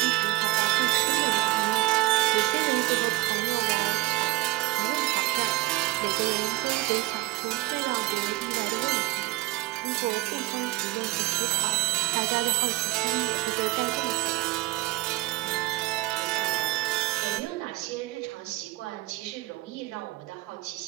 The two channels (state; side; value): quieter; left; 19.1 dB